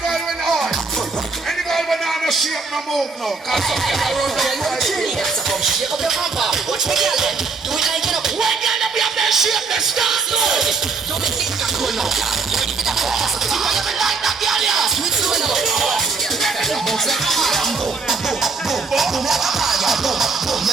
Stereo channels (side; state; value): left; quieter; 4.4 dB